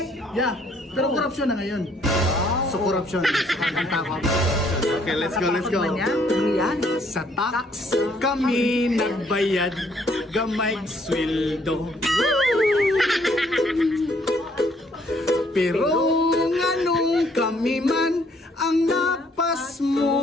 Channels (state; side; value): normal; both; correlation 0.66